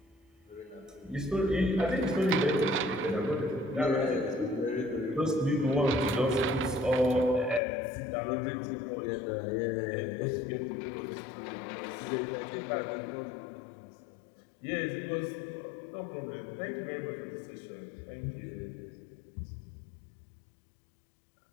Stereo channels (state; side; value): drops out; right; at 7.6 s